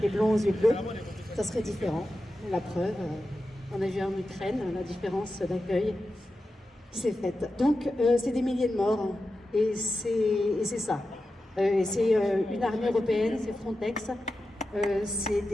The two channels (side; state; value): both; normal; correlation 0.91